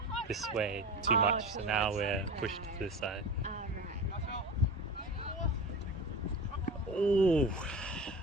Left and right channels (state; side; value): normal; both; correlation 0.30